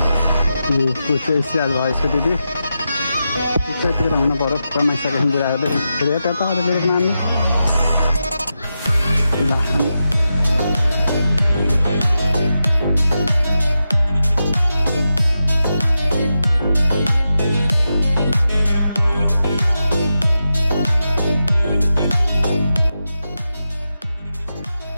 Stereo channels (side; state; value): both; inverted; correlation -0.89